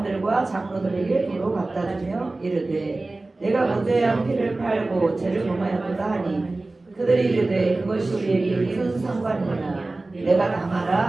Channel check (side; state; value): left; quieter; 3.1 dB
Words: 장로들에게 도로 갖다 주며 이르되 내가 무죄한 피를 팔고 죄를 범하였도다 하니 그들이 이르되 그것이 우리에게 무슨 상관이냐 내가 당하라